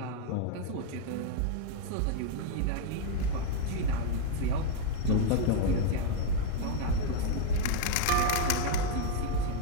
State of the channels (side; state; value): both; different; correlation 0.00